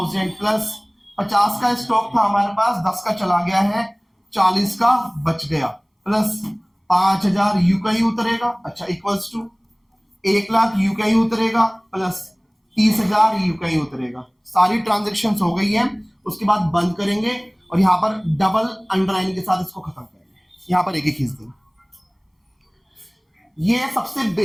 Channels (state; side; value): identical; both; correlation 1.00